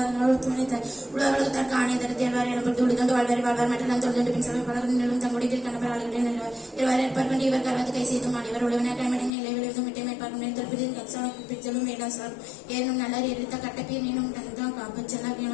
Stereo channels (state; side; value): drops out; right; at 9.3 s